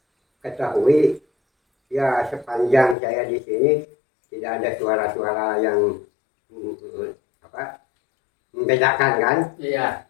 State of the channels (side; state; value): right; drops out; at 3.0 s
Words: ketahui ya sepanjang saya di sini tidak ada suara-suara yang membedakan kan.